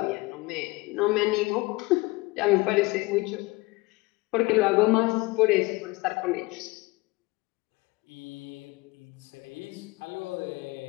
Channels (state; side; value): quieter; right; 23.0 dB